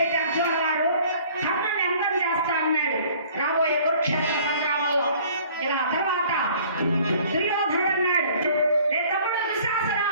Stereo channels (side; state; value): both; inverted; correlation -0.53